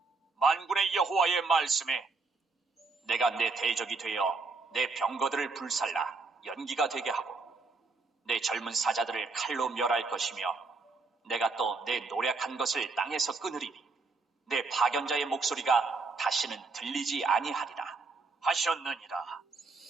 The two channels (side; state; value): left; quieter; 4.1 dB